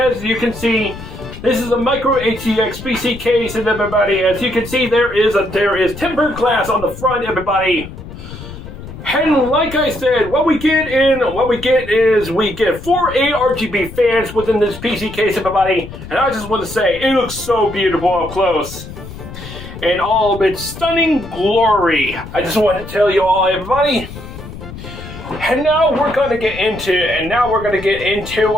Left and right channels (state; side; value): noise; left; rumble, 13 dB below the sound